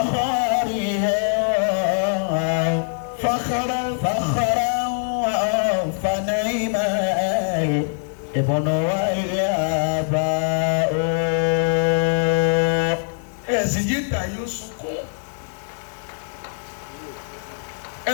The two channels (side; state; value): right; silent; digital silence